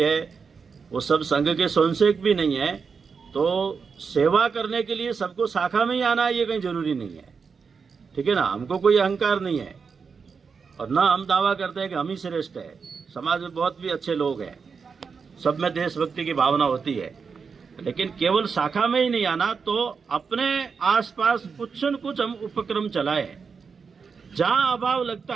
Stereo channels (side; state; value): left; quieter; 5.6 dB